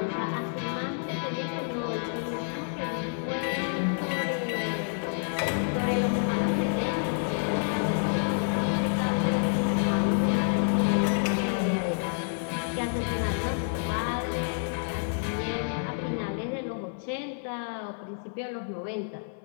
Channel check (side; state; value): right; silent; 59 dB below the other